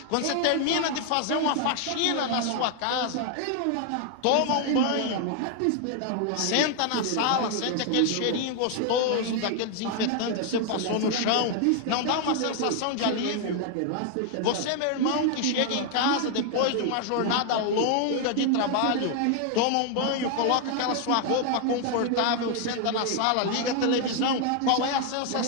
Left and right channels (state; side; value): different; both; correlation 0.00